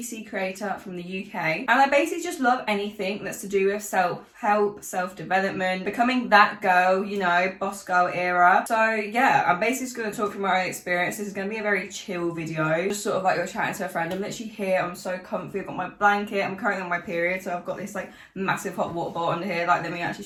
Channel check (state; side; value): identical; both; correlation 1.00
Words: creator from the UK, and I basically just love anything that's to do with self-help, self-development, becoming that girl, you know, boss girl era. So yeah, I'm basically just going to talk from my own experience. This is going to be a very chill video, just sort of like you're chatting to a friend. I'm literally here, I'm so comfy, I've got my blanket, I'm currently on my period, so I've got this like massive hot water bottle under here. Like, let me actually